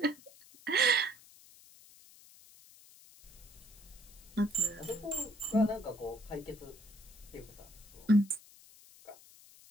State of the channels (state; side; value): noise; left; hiss, 22 dB below the sound